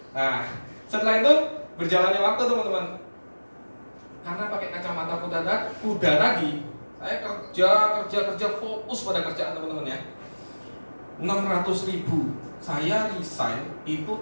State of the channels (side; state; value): both; inverted; correlation -1.00